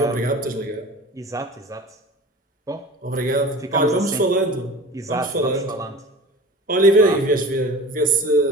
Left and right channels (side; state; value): both; normal; correlation 0.38